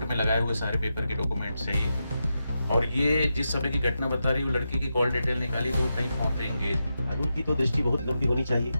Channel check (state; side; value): inverted; both; correlation -0.88